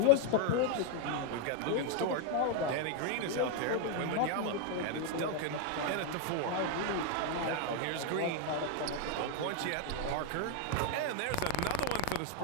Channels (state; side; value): different; both; correlation 0.00